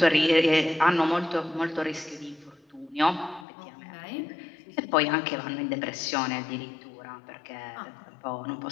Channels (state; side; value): drops out; right; at 3.5 s